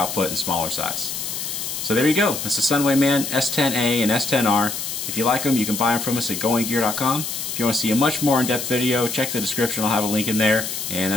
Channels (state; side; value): noise; left; hiss, 5 dB below the sound